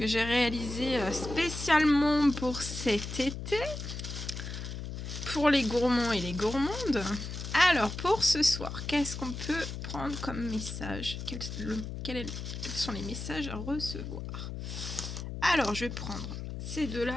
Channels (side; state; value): left; noise; hum, 7 dB below the sound